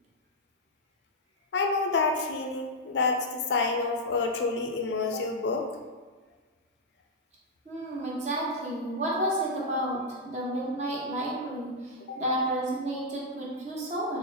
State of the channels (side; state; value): both; normal; correlation -0.04